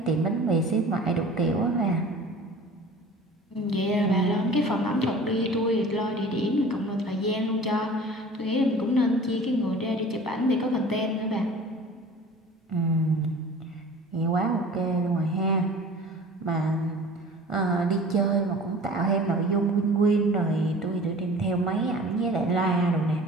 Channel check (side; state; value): both; normal; correlation 0.43